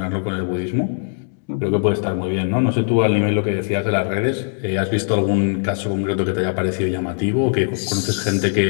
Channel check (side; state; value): right; silent; digital silence